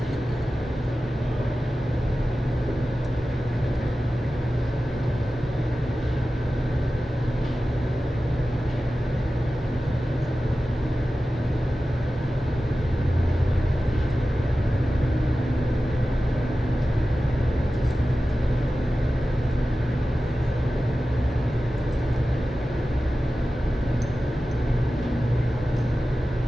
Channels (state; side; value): normal; both; correlation 0.94